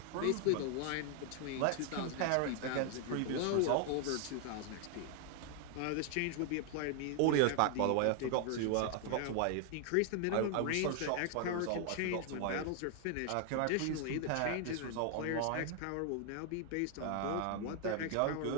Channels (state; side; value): different; both; correlation 0.00